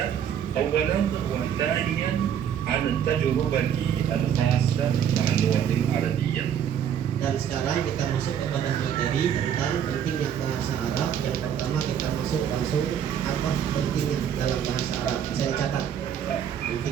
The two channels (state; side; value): quieter; left; 9.0 dB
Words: أولا، وثانيا عن التجربة الخاصة مع اللغة العربية. Dan sekarang kita masuk kepada materi tentang pentingnya bahasa Arab. Yang pertama kita masuk langsung apa pentingnya dalam bahasa Arab. Bisa dicatat